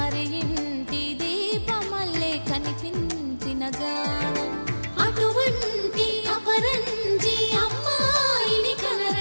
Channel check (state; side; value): inverted; both; correlation -1.00